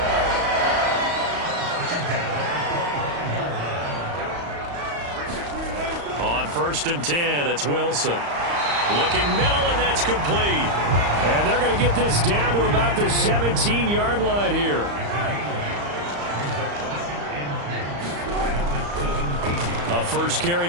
On 1st and 10, it's Wilson. Looking middle, and that's complete. And they're going to get this down to about the 17-yard line here. A first carry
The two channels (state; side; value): late; left; 35 ms